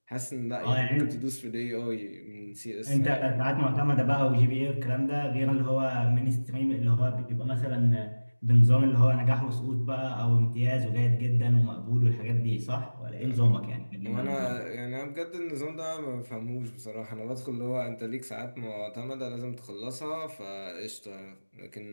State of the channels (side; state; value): both; inverted; correlation -1.00